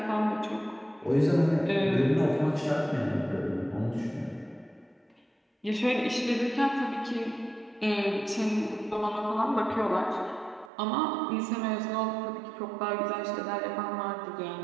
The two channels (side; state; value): left; drops out; at 10.7 s